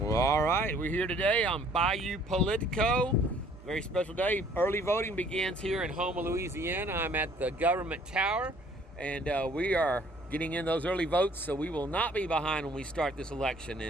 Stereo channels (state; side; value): normal; both; correlation 0.58